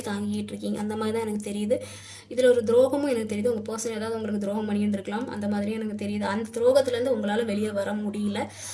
தாங்கிக்கிட்டு இருக்கீங்க, அந்த மாதிரி தான் எனக்கு தெரியுது. இதில் ஒரு துரோகமும் எனக்கு தெரியுது. உங்கள் பர்சன் ஏதாவது உங்களுக்கு துரோகம் பண்ணியிருந்துருக்கலாம், அந்த மாதிரியும் எனக்கு தெரியுது. அந்த துரோகத்துலேருந்து உங்களால் வெளியே வர முடியல,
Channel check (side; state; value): both; identical; correlation 1.00